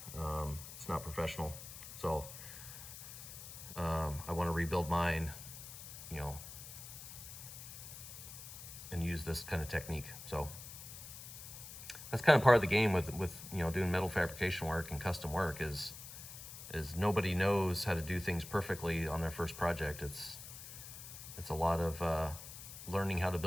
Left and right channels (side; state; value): left; noise; hiss, 12 dB below the sound